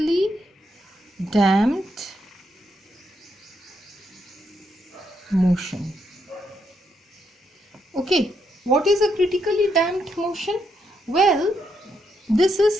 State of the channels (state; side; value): normal; both; correlation 0.78